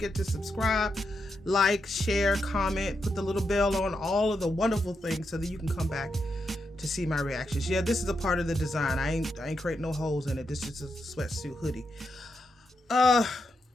to subscribe, like, share, comment, put the little bell on, all of the wonderful things so that you can come back to see my reactions. Yeah, this is a part of the design. I ain't creating no holes in it. This is just a sweatsuit hoodie.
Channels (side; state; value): both; normal; correlation 0.84